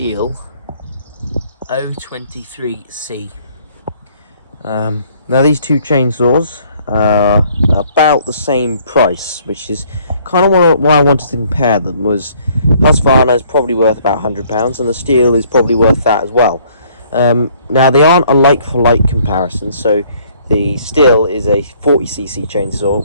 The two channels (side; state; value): both; inverted; correlation -0.62